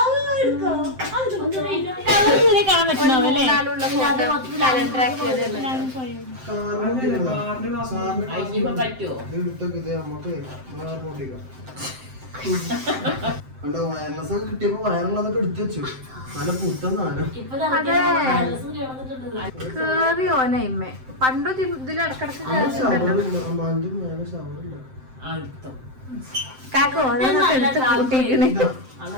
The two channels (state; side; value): late; left; 7.7 ms